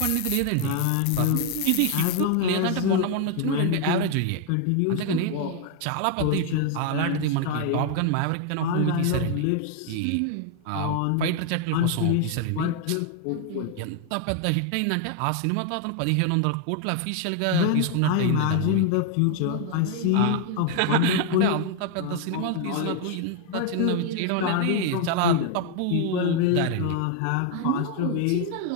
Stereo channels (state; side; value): different; both; correlation 0.00